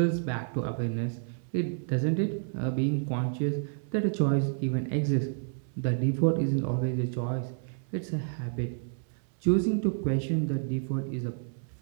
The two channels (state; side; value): silent; left; 58 dB below the other